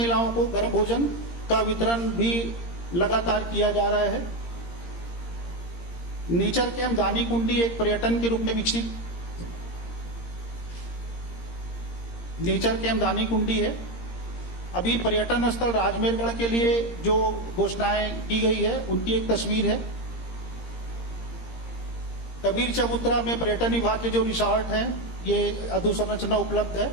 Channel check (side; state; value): right; late; 17 ms